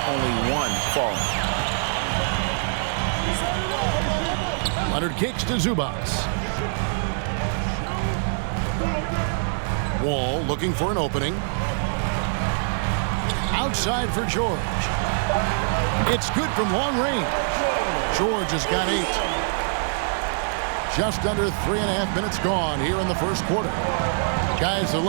only 1 falling. Leonard kicks to Zubac. Wall looking for an opening. Outside for George. It's good from long range. George has got 8. Just under 3.5 minutes gone here in the first quarter. Guys are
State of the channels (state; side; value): silent; left; digital silence